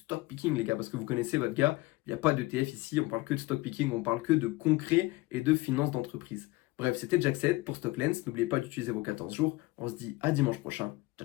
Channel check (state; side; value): quieter; right; 20.9 dB